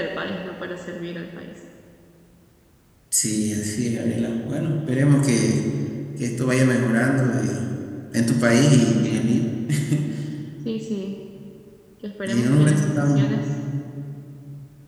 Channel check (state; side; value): identical; both; correlation 1.00